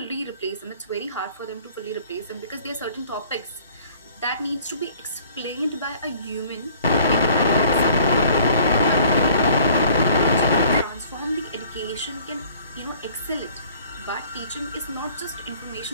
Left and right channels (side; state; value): both; inverted; correlation -0.54